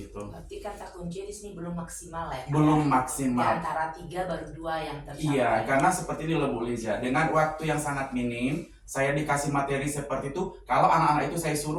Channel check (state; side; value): identical; both; correlation 1.00